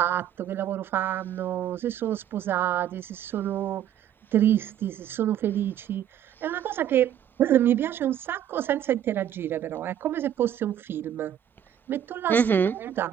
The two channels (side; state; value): left; quieter; 10.3 dB